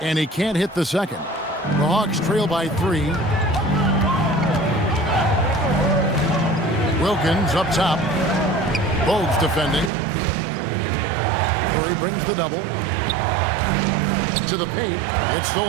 he can't hit the second. The Hawks trail by 3. Wilkins up top. Bogues defending. Curry brings the double. To the paint. It's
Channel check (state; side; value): drops out; left; at 9.9 s